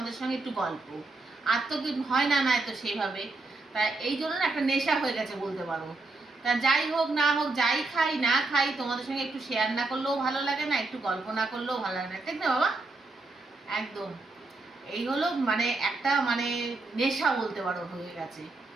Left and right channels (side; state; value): left; quieter; 3.3 dB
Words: সঙ্গে একটু গল্প। আর তো কি হয় না, তো সেইভাবে তাই এই জন্য না একটা নেশা হয়ে গেছে বলতে পারো। তা যাই হোক না হোক, যাই খাই না খাই, তোমাদের সঙ্গে একটু শেয়ার না করলেও ভালো লাগে না, একটু গল্প না করলেও ভালো লাগে না, ঠিক না বাবা? একদম এই হলো মানে একটা মানে নেশা বলতে পারো হয়ে গেছে।